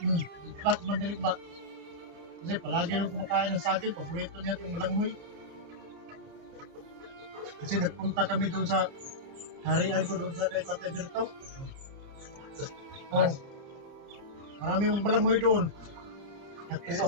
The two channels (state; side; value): late; left; 30 ms